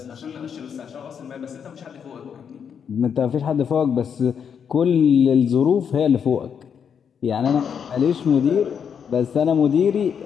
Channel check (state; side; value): quieter; right; 7.4 dB